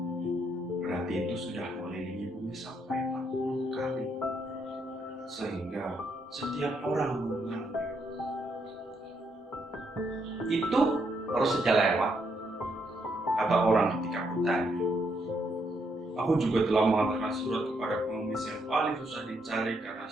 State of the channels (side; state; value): both; normal; correlation 0.76